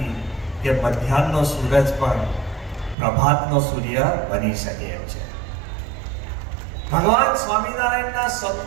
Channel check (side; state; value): left; drops out; at 3.0 s